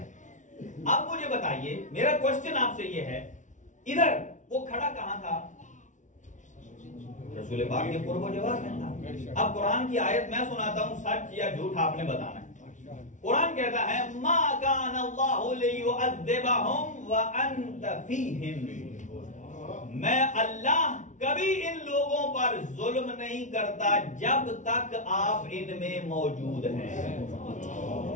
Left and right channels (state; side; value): late; right; 0.36 ms